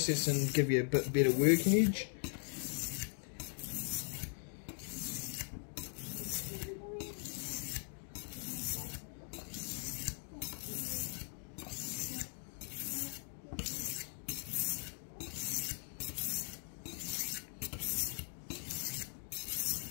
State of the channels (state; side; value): silent; right; 51 dB below the other